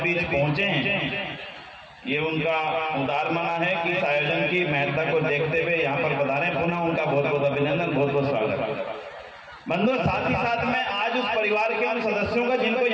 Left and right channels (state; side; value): identical; both; correlation 1.00